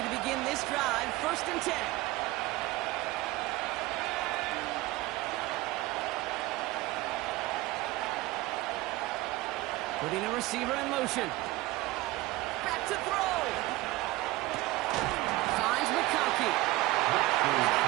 to begin this drive. 1st and 10. Putting a receiver in motion. Back to throw. Finds McConkey.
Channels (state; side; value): quieter; left; 19.3 dB